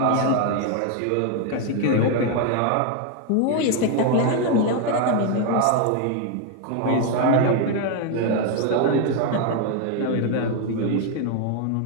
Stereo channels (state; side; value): different; both; correlation 0.01